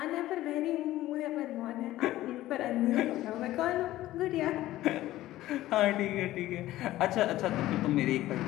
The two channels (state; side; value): quieter; right; 15.3 dB